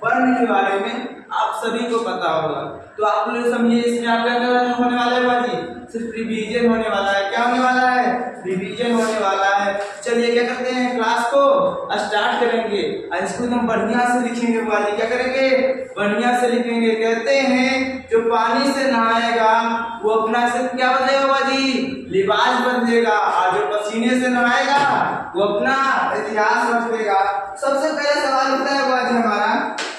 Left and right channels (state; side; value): identical; both; correlation 1.00